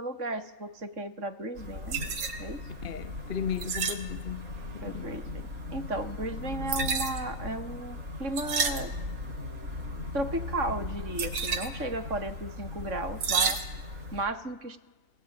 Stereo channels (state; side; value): late; left; 3.7 ms